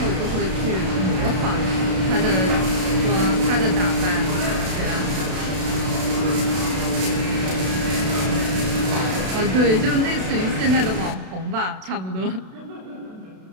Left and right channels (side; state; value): left; late; 32 ms